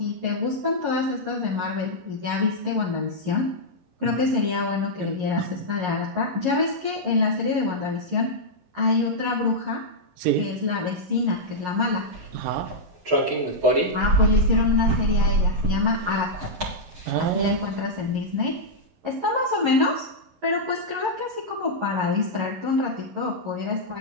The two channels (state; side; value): late; left; 11 ms